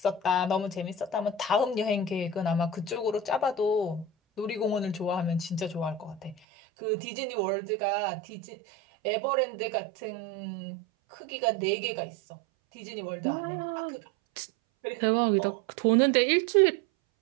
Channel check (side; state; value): left; drops out; at 6.4 s